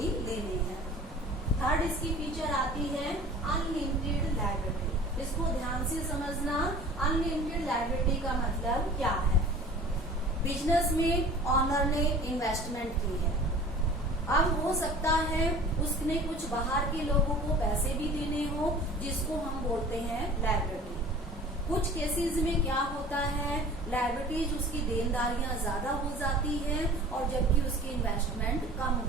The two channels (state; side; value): normal; both; correlation 0.44